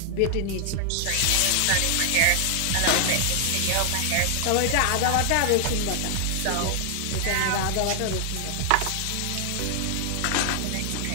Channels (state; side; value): different; both; correlation 0.00